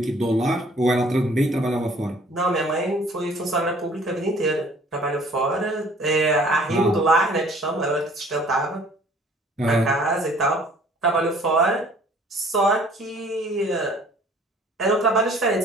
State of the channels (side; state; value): both; normal; correlation 0.54